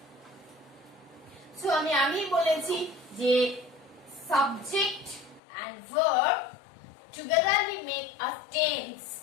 so আমি বলেছি যে subject and verb togetherly make a tense.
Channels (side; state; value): right; drops out; at 5.4 s